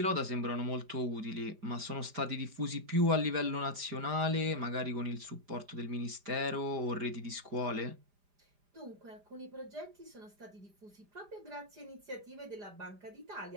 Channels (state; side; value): late; left; 4.9 ms